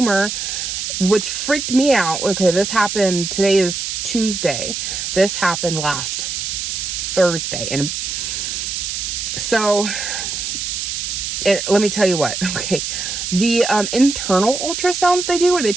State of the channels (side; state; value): right; noise; hiss, 3 dB below the sound